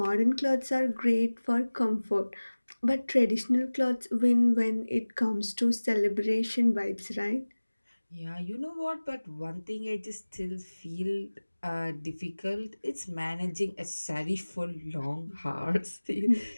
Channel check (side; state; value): both; inverted; correlation -1.00